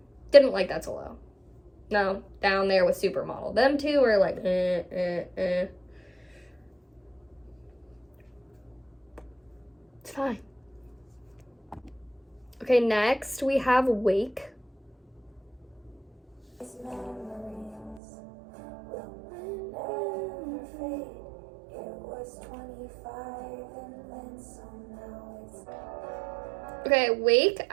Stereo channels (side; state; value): left; drops out; at 18.0 s